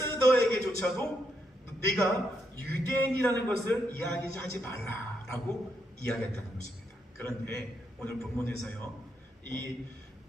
네가 유대인이라는 것을 이야기하지 말라라고 이야기했다는 것입니다. 그런데 오늘 본문에서요, 이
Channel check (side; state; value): both; normal; correlation 0.79